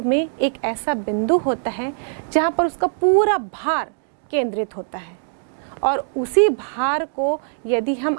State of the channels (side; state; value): left; silent; digital silence